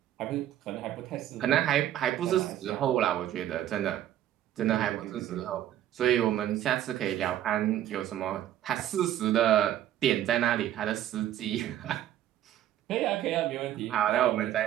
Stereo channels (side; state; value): left; quieter; 12.1 dB